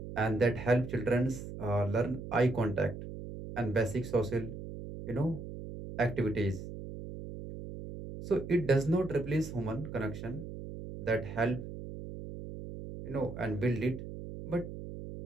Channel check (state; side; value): noise; right; hum, 10 dB below the sound